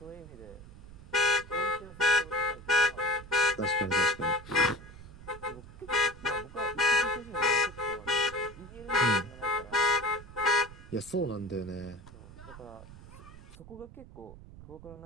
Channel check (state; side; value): noise; right; rumble, 17 dB below the sound